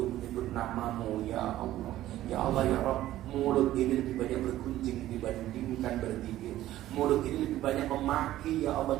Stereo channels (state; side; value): quieter; left; 14.2 dB